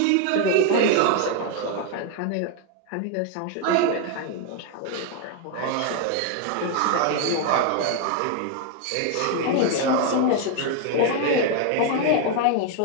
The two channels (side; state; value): both; different; correlation 0.01